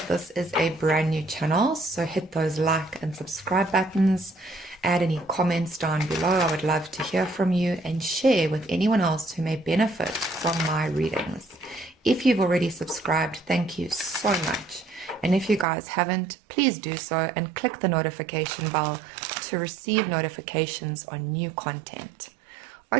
this is a brand new channel, so hit those like and subscribe buttons, add any comments down below. I would love to hear from you, and share with anyone else who may benefit from my readings. If you've already subscribed, thank you so much. And if you guys haven't, please do so and click the notification bell to receive notifications on new content.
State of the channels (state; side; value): drops out; left; at 15.7 s